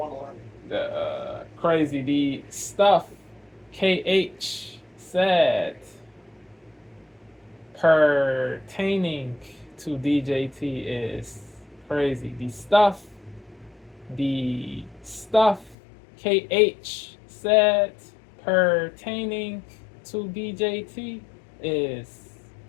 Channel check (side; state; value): right; drops out; at 15.8 s